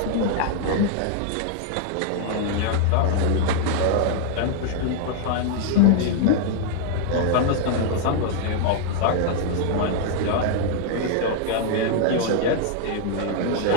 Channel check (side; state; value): both; different; correlation 0.00